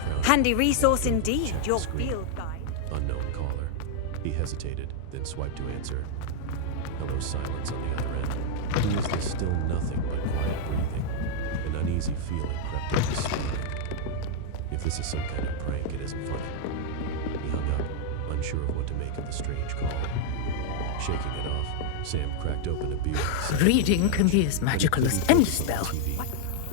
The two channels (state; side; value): different; both; correlation 0.00